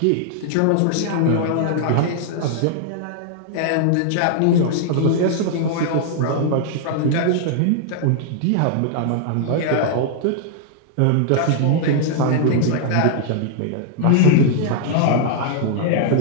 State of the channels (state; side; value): different; both; correlation -0.01